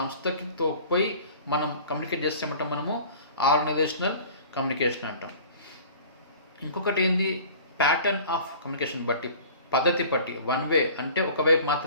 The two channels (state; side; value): inverted; both; correlation -0.44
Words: పోయి మనం కమ్యూనికేట్ చేస్తామంటాం మనము ఆర్గనైజేషనల్ కమ్యూనికేషన్ అంటాం. ఇంకొకటి ఏంది ప్యాటర్న్ ఆఫ్ కమ్యూనికేషన్ బట్టి, పద్ధతి బట్టి. వన్ వే అంటే ఒకవైపు